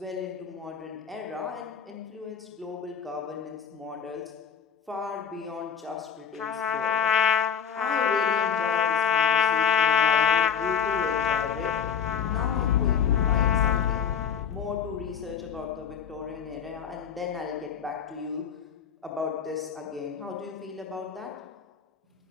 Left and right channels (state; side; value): quieter; right; 7.5 dB